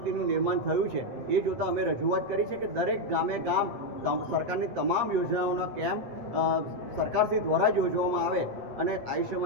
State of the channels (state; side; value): late; left; 8.2 ms